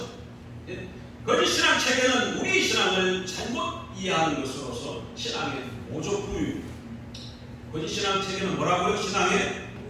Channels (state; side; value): identical; both; correlation 1.00